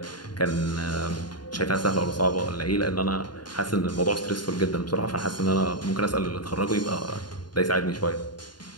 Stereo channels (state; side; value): late; right; 0.71 ms